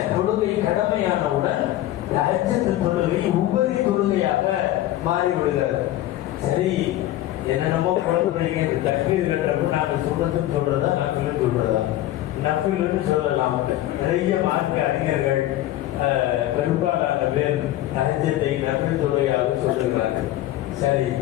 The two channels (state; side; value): quieter; right; 14.4 dB